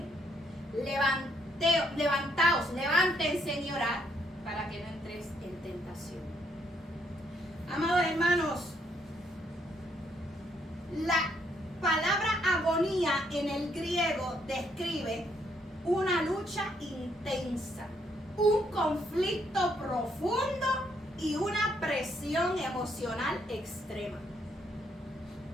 Levantaos, levántense y orad para que no entréis en tentación. Amados hermanos, la palabra agonía en el griego describe una lucha intensa, un conflicto profundo y una presión emocional extrema.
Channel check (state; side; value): normal; both; correlation 0.72